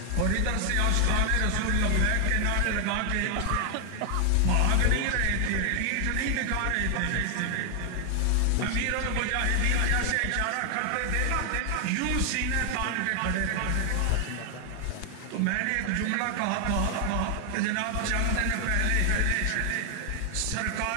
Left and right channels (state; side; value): different; both; correlation 0.00